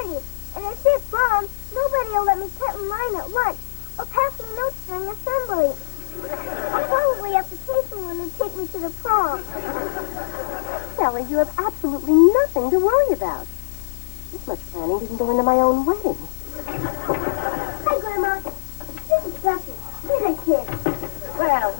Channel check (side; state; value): right; silent; digital silence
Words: And if it's wrong, nobody will let me cut in line at lunch or pass me notes during assembly. I'll probably have to pay someone to take me to the prom. Sally, you have absolutely nothing to worry about. This much planning didn't go into my own wedding. Hi, Grandma. This is Duffy. He's a kid. Well,